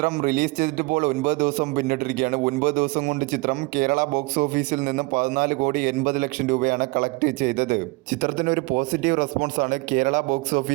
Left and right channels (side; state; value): left; quieter; 24.8 dB